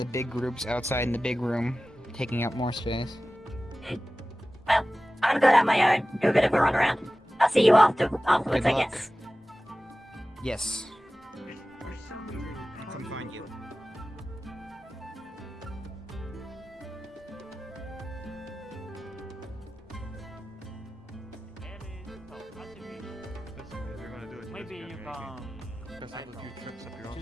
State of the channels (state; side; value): normal; both; correlation 0.96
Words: big groups outside in the big room, taking up more space. Well, I'm gonna go down my own, do a bit of a run around. I'll see you afterwards, Good I luck. guess. Yes. Come find you. Maybe you can